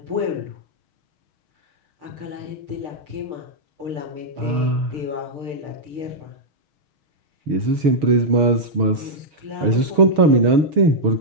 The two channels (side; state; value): left; late; 6.3 ms